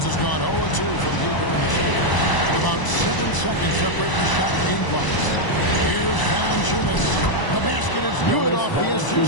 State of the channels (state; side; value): late; right; 1.0 ms